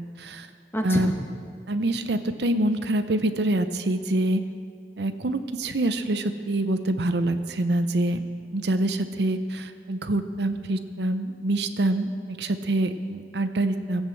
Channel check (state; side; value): normal; both; correlation 0.68